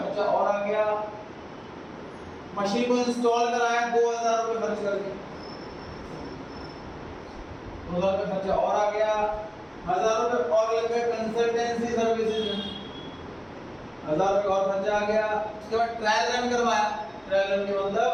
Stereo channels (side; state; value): both; identical; correlation 1.00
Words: और आ गया। मशीन को इंस्टॉल कराया 2000 रुपए खर्च करके, 2000 रुपए खर्चा और आ गया। 1000 रुपए और लग गए कंसल्टेंसी सर्विसेज में, 1000 रुपए और खर्चा आ गया। उसके बाद ट्रायल रन करवाया। ट्रायल रन के मतलब